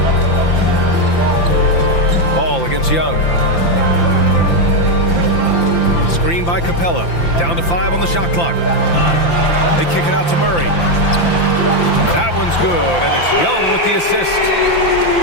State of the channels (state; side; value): late; right; 5.9 ms